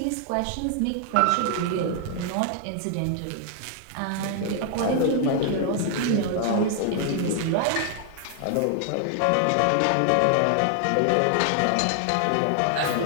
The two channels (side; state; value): both; different; correlation 0.00